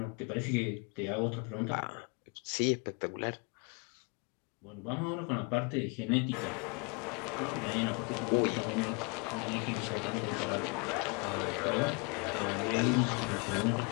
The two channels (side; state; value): right; quieter; 32.3 dB